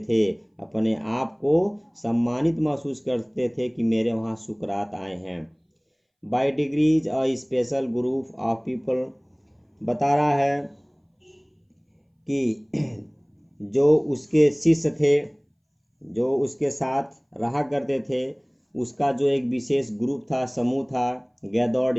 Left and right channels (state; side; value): identical; both; correlation 1.00